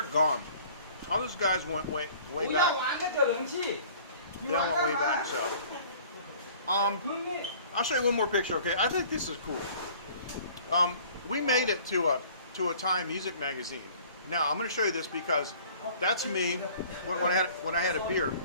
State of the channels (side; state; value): both; inverted; correlation -0.50